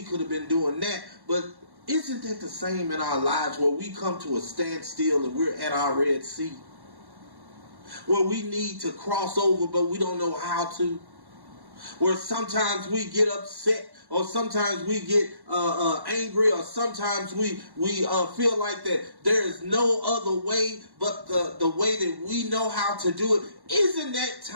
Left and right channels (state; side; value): late; left; 1.1 ms